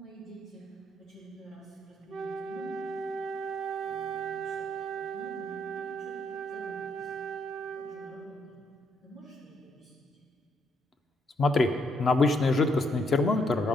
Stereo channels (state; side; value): normal; both; correlation 0.73